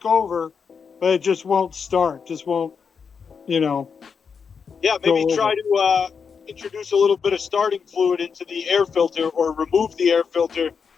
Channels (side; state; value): right; quieter; 6.1 dB